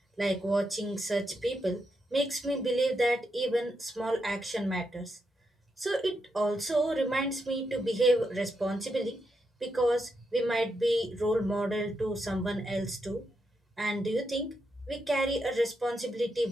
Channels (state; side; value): normal; both; correlation 0.83